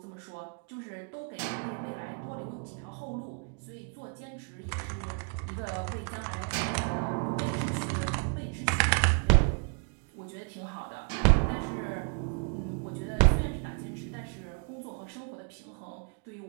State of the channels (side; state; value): left; quieter; 39.5 dB